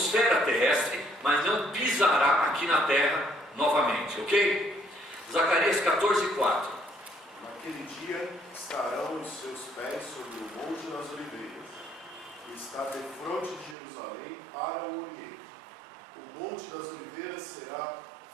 terrestre, mas não pisará aqui na terra novamente, ok? Zacarias 14:4. Naquele dia estarão os seus pés sobre o Monte das Oliveiras, que está defronte de Jerusalém para o Oriente. O Monte das Oliveiras será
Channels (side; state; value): left; drops out; at 13.8 s